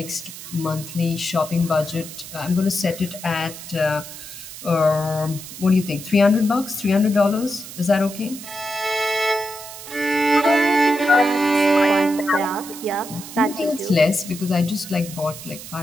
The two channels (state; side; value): noise; right; hiss, 13 dB below the sound